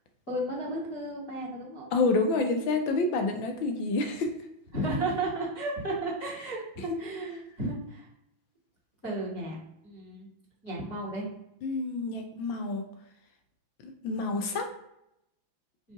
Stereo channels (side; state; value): right; late; 5.9 ms